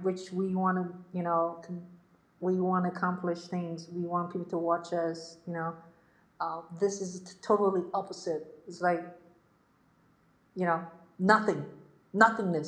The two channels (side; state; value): both; identical; correlation 1.00